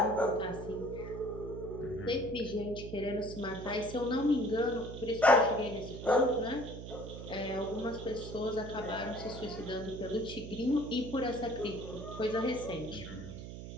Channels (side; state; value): right; noise; hum, 10 dB below the sound